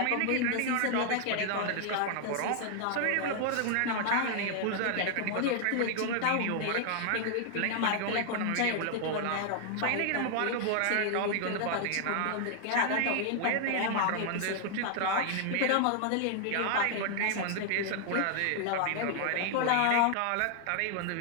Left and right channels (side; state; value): both; different; correlation 0.00